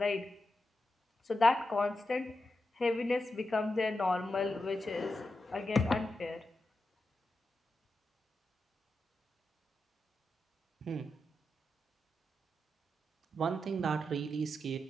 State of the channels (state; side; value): normal; both; correlation 0.88